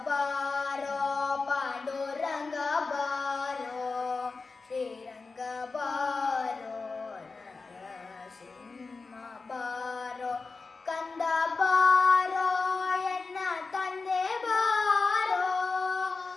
बारो पांडुरंग बारो श्रीरंग बारो नरसिंह बारो कंद बारो ಎನ್ನ ತಂದೆ ಬಾರೋ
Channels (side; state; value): right; quieter; 4.1 dB